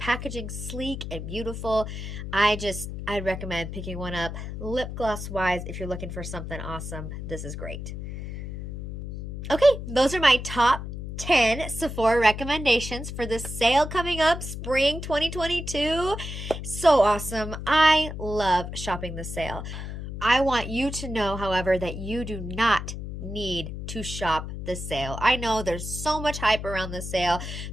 sleek and beautiful. I'd recommend picking one up. Lip gloss wise, if you're looking for something awesome, this is great. Okay, those are my top 10 Sephora recommendations for the sale coming up spring 2022. So awesome. I love shopping the sale. I want you to know, however, that you do not need to shop the sale. I know there's so much hype around the sale.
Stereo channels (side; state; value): left; noise; hum, 7 dB below the sound